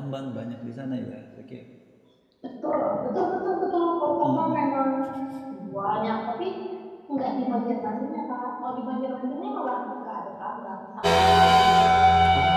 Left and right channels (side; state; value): both; identical; correlation 1.00